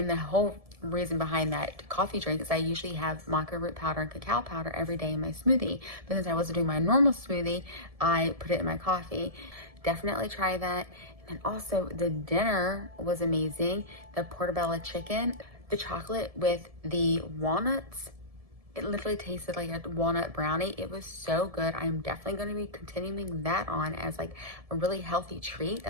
the whole reason behind that coffee drink is I usually have maca root powder and cacao powder every day in my smoothie, but since I wasn't doing my normal smoothie, I put it in my coffee. Definitely try that. And also the dinner was amazing. The portobello chicken, the chocolate with the walnuts, it literally tasted like a walnut brownie. It was so good. I'm definitely going to be continuing that on as like a really healthy treat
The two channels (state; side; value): late; left; 1.7 ms